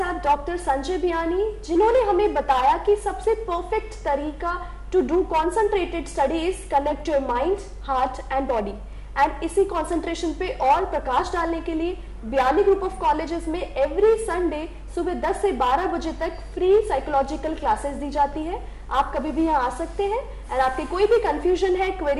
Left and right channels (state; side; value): identical; both; correlation 1.00